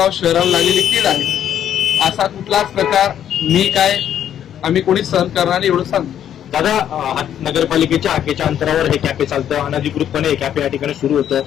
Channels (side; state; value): right; quieter; 10.1 dB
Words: शहराला लागलेली कीड आहे. असा कुठलाच प्रकार मी काय आम्ही कोणी सहन करणार नाही एवढं सांगतो. दादा, नगरपालिकेच्या हाकेच्या अंतरावर हे कॅफे चालतं. अनधिकृतपणे हे कॅफे या ठिकाणी सुरू होतं.